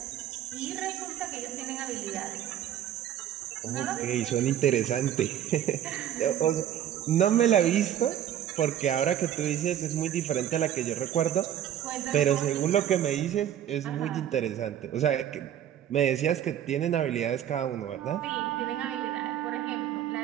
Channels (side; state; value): left; quieter; 10.7 dB